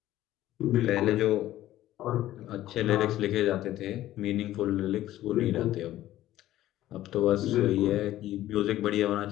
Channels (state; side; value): quieter; right; 14.2 dB